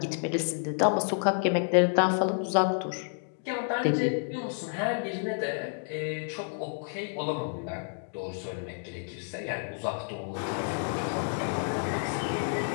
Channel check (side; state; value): right; silent; 58 dB below the other